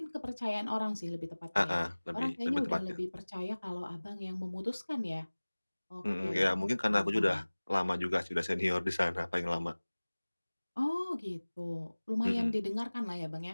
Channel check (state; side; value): inverted; both; correlation -1.00